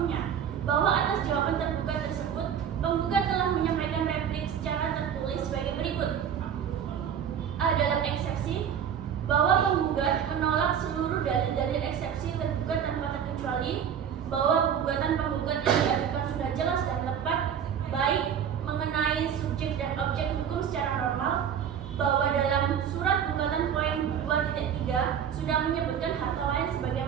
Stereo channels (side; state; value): left; quieter; 8.4 dB